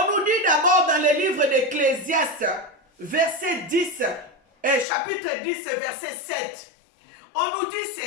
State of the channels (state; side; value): drops out; right; at 4.9 s